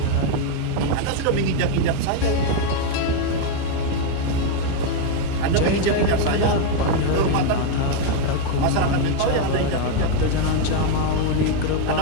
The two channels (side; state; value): both; different; correlation 0.01